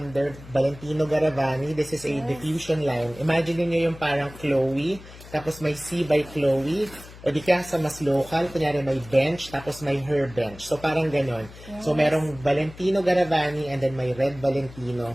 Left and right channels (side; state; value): left; noise; hum, 18 dB below the sound